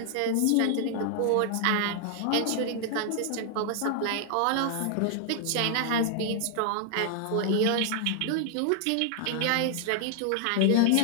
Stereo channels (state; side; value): different; both; correlation 0.00